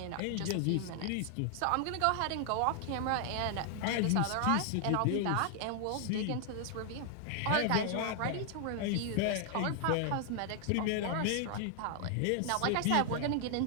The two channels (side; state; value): both; different; correlation 0.00